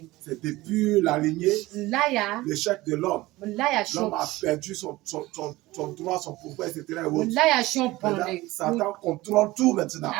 c'est depuis la lignée, l'échec de l'homme. L'homme a perdu son droit, son pouvoir, etc. Satan contrôle tout maintenant.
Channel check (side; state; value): left; quieter; 19.1 dB